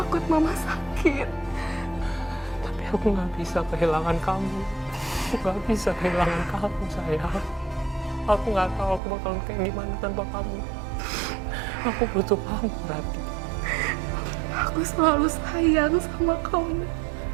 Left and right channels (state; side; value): drops out; left; at 9.0 s